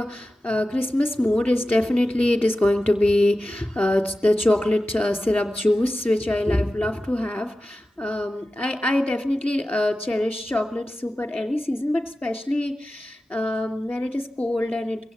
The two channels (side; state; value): both; normal; correlation 0.94